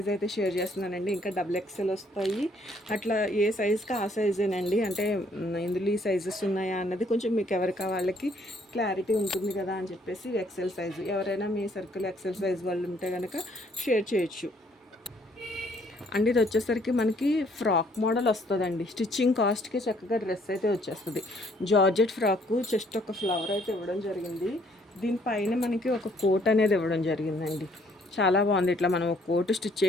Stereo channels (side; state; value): both; normal; correlation 0.65